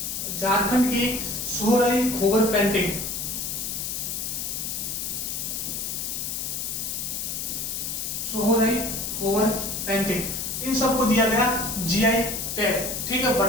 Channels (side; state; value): left; noise; hiss, 3 dB below the sound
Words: इन सबको दिया गया जीआई टैग। ठीक है,